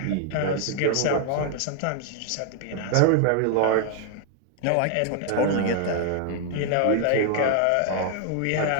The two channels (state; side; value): different; both; correlation 0.00